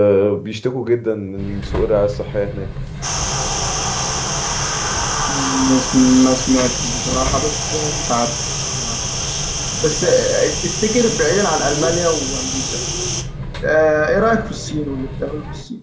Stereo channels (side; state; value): both; identical; correlation 1.00